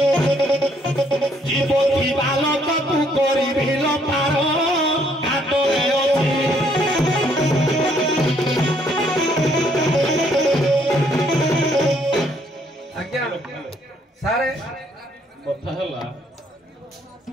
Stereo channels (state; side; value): normal; both; correlation 0.67